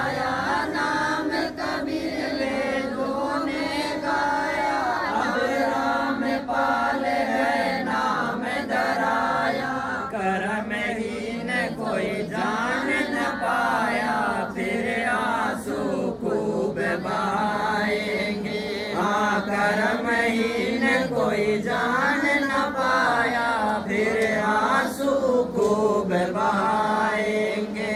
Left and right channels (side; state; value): both; identical; correlation 1.00